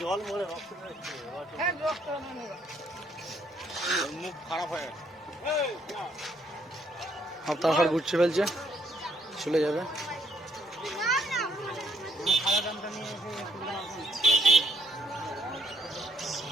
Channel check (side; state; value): both; normal; correlation 0.69